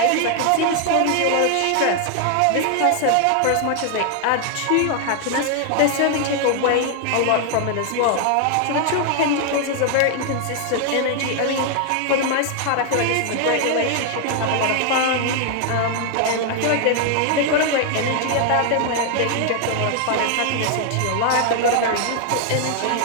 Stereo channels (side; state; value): both; different; correlation 0.00